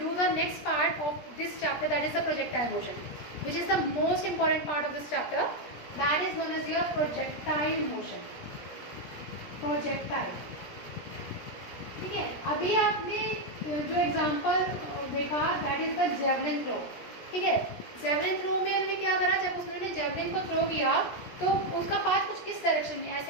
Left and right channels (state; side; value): late; right; 17 ms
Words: the next part of this chapter, that is the projectile motion, which is the most important part of this chapter, that is known as your projectile motion. Projectile, ठीक है। अभी आपने जो example देखा that is the javelin throw, ठीक है। Javelin throw में उन्होंने क्या करा, जब उसने जेवलिन को थ्रो किया तो उसका पाथ कुछ इस डायरेक्शन में